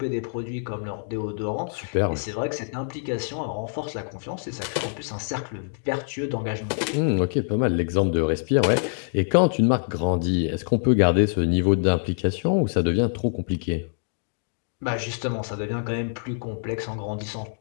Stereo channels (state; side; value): silent; right; digital silence